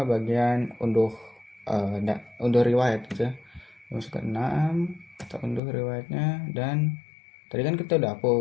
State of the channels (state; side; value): drops out; right; at 5.6 s